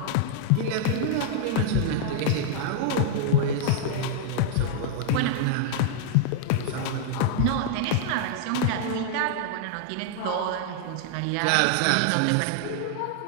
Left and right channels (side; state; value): both; different; correlation -0.01